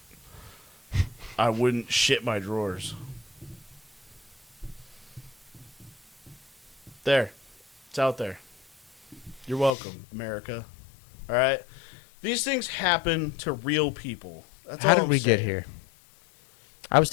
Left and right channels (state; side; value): drops out; right; at 9.7 s